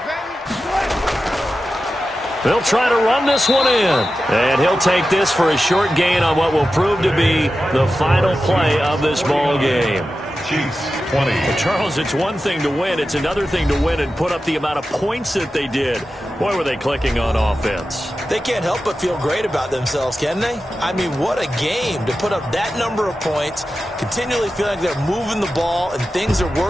They'll try to run this one in. And he'll take this for a short gain on what will prove to be the final play of this ball game. Chiefs 20. Charles, it's one thing to win. It's another thing to win and put up the amount of points that they did. Boy, were they clicking on offense. They can't help but feel great about themselves, can they? I mean, what a game to put up that number of points, continually feeling like they're moving the ball and things are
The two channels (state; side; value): normal; both; correlation 0.92